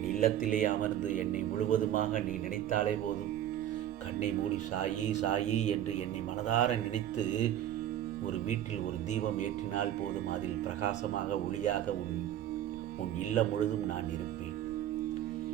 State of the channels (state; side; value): quieter; left; 11.5 dB